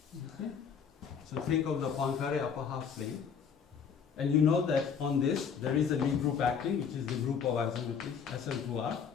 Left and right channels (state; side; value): quieter; right; 6.8 dB